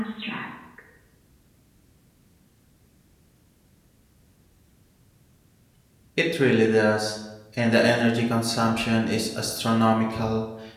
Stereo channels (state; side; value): identical; both; correlation 1.00